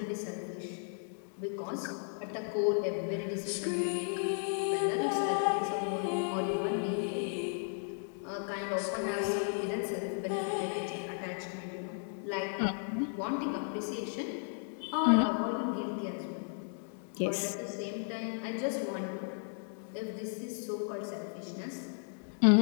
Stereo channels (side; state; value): right; silent; 55 dB below the other